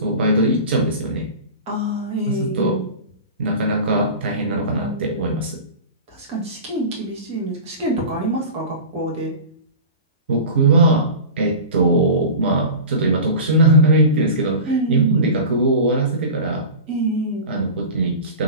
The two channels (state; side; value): inverted; both; correlation -0.32